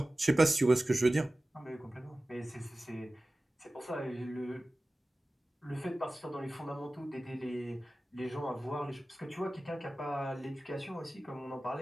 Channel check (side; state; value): both; normal; correlation 0.97